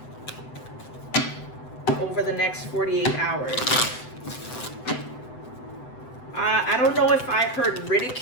over the next 48 hours? I don't know if I heard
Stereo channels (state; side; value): late; right; 7.9 ms